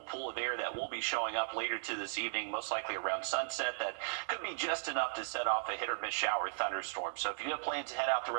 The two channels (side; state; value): left; silent; digital silence